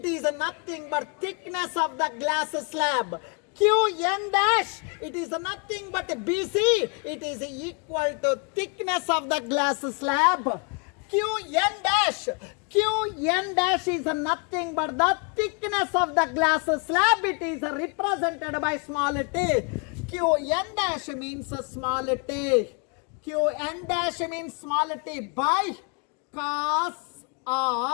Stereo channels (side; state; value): right; quieter; 36.2 dB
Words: is nothing but thickness of the glass slab. Qn dash, it is nothing but BC. It is equal to thickness of the glass slab. Qn dash is nothing but the thickness of the glass slab. It is represented by small t. Qn dash means small t. Qn dash means small t by cos